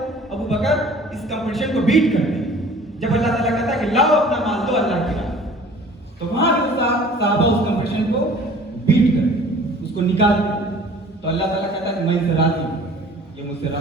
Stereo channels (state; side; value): normal; both; correlation 0.49